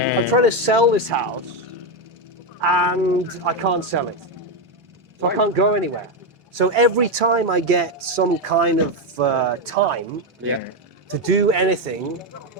trying to sell this house and I can't sell it. So I can't go anywhere. So every time I get some kind of time to do anything,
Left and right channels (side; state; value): both; normal; correlation 0.07